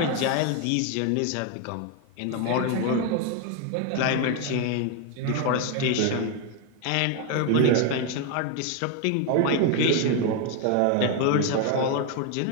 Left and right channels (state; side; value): different; both; correlation 0.01